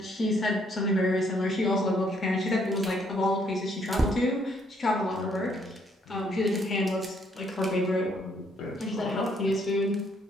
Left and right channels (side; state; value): both; normal; correlation 0.69